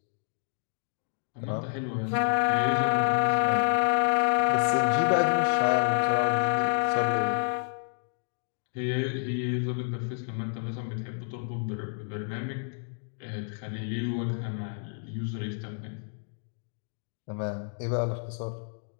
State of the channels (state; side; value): silent; right; 59 dB below the other